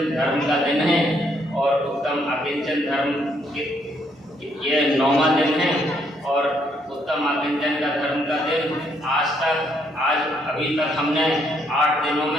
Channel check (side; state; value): both; normal; correlation 0.71